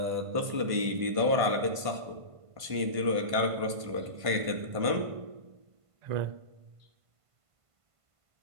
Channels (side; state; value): left; late; 1.5 ms